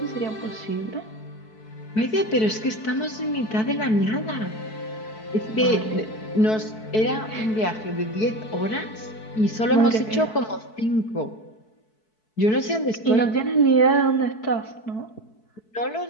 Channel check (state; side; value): late; right; 4.6 ms